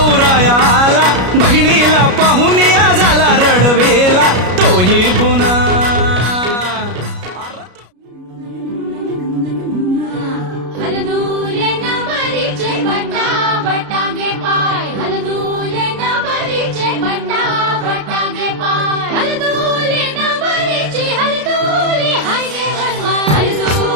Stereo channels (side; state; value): left; late; 33 ms